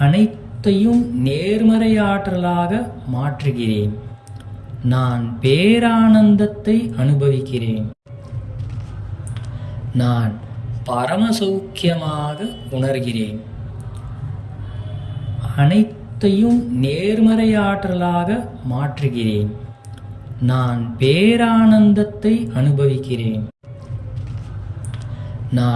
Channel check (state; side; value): identical; both; correlation 1.00